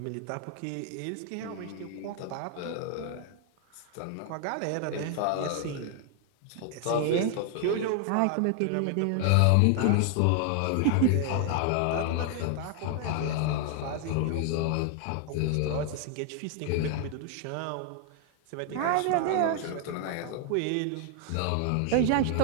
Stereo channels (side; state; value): both; different; correlation 0.00